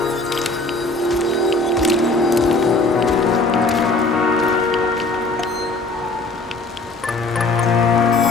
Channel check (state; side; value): quieter; right; 3.2 dB